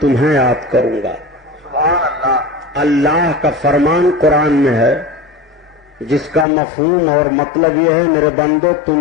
تمہیں یاد کروں گا. سبحان اللہ. اللہ کا فرمان قرآن میں ہے جس کا مفہوم اور مطلب یہ ہے میرے بندو تم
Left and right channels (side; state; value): right; drops out; at 6.5 s